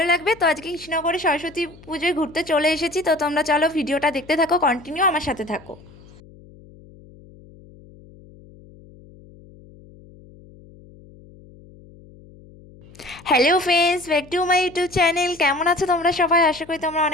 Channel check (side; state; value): left; noise; hum, 23 dB below the sound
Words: লাগবে। তো আজকে কৃষ্ণনগরে সরস্বতী পুজোয় ঘুরতে চলে এসেছি। তো তোমরা চলো ভিডিওটা দেখতে থাকো, কন্টিনিউ আমার সাথে থাকো। Hello friends, back to my YouTube channel. কেমন আছো তোমরা সবাই? আশা করি তোমরা